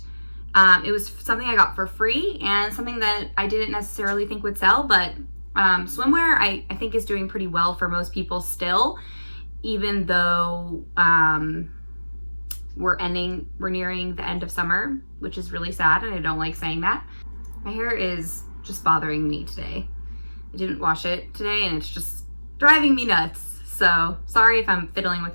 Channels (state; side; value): inverted; both; correlation -1.00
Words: it was something I got for free and something that I didn't necessarily think would sell, but swimwear I think is doing pretty well for most people still, even though we're nearing the end of summer, which is really sad, and I don't like saying that. My hair is just bothering me today. I didn't wash it today, and it's just driving me nuts. So sorry if I'm fiddling with